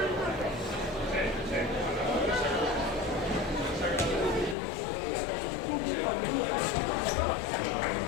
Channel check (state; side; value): drops out; right; at 4.5 s